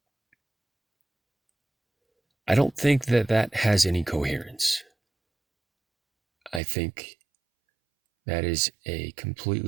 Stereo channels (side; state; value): left; drops out; at 6.6 s